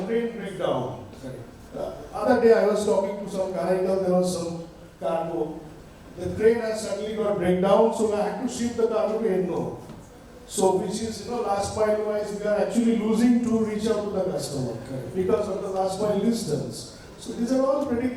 train breakdown. Other day I was talking to some carrier, there was some cargo. The train has suddenly got breakdown, so I had to ship the cargo to Endo. So which is, last mile wise, we are actually losing to reach out to the customer because of the last mile distance. So these are all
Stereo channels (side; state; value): both; identical; correlation 1.00